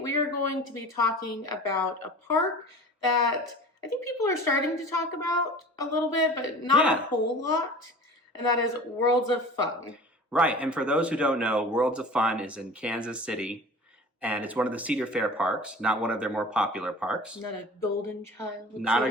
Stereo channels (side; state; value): both; normal; correlation 0.39